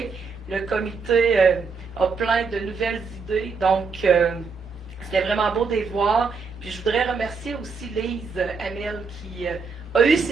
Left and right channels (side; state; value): left; quieter; 4.9 dB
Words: Le comité a plein de nouvelles idées, donc c'était vraiment beau de les voir. Puis je voudrais remercier aussi Lise Hamel qui a eu